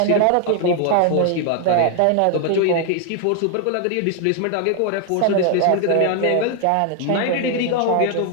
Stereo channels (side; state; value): both; different; correlation 0.00